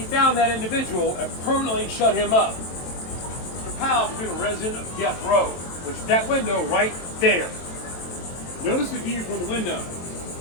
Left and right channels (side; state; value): right; late; 23 ms